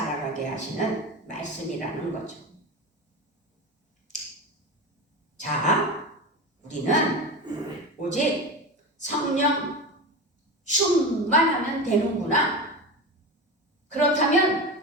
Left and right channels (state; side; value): normal; both; correlation 0.24